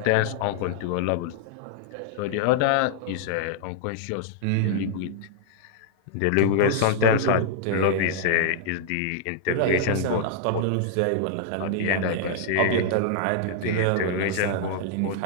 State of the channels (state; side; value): different; both; correlation -0.01